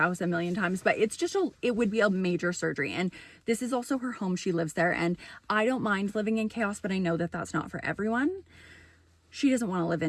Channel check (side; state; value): both; identical; correlation 1.00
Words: a million times, but it would be a major surgery. And this is also her home. She lives there and I don't mind living in chaos, but I know that that's not for everyone. She doesn't want to live